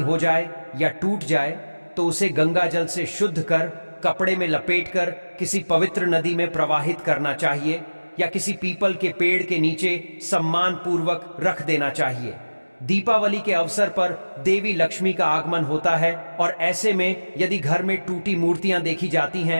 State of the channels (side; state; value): both; inverted; correlation -1.00